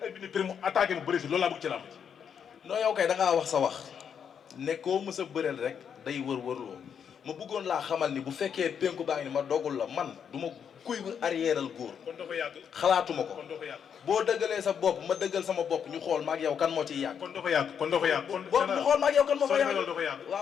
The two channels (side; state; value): right; quieter; 7.6 dB